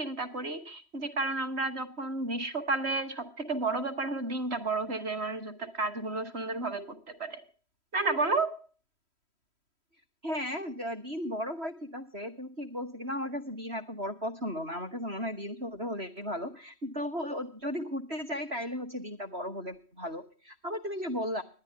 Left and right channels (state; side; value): late; left; 3.1 ms